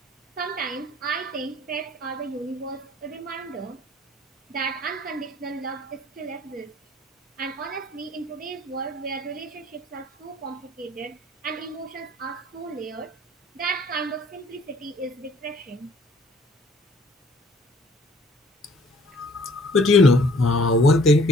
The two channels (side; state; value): both; normal; correlation 0.57